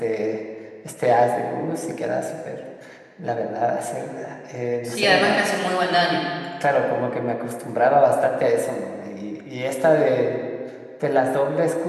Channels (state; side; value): identical; both; correlation 1.00